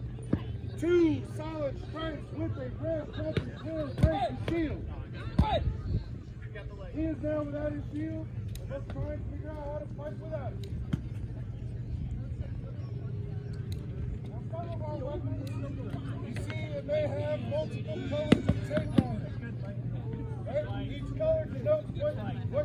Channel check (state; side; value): identical; both; correlation 1.00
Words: 2 solid strikes with a red jumping clear break the shield. He is now without his shield, and let's try and figure out how to fight without it. Now, some of our weapons, you see, it may have multiple colors of tape on it. Right? Each color denotes what